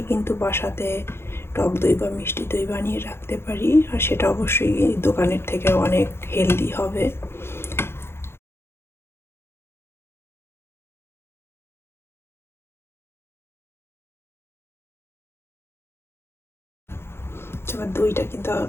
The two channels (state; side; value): late; right; 0.12 ms